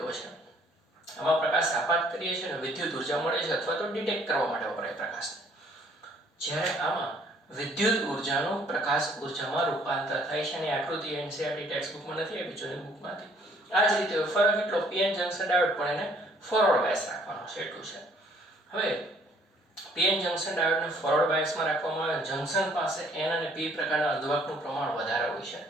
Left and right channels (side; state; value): both; normal; correlation 0.61